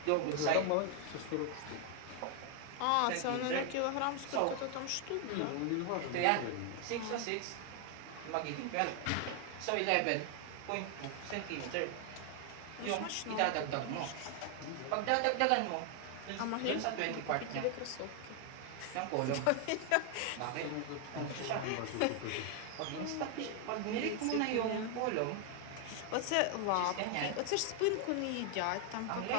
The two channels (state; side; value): different; both; correlation 0.00